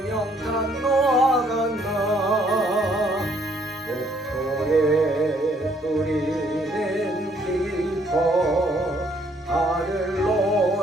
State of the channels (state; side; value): normal; both; correlation 0.66